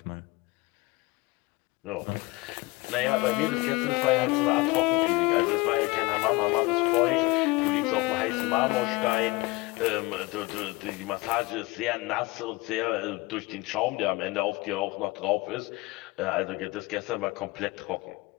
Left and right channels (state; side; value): quieter; right; 23.0 dB